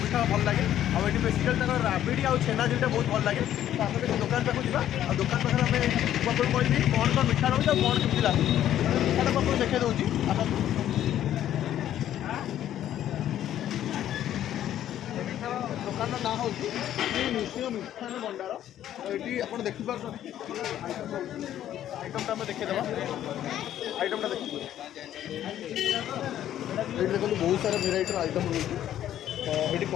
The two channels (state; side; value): quieter; right; 11.6 dB